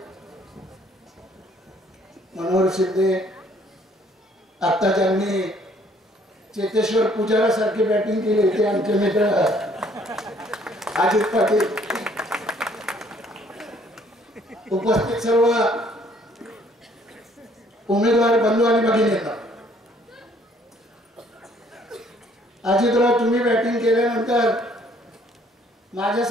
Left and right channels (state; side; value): normal; both; correlation 0.62